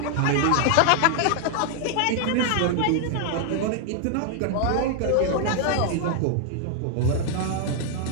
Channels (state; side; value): different; both; correlation 0.00